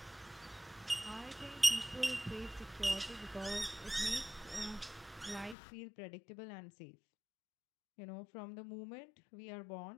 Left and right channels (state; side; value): drops out; right; at 5.6 s